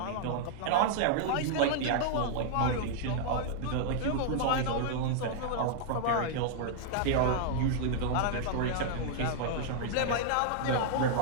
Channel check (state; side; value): different; both; correlation -0.01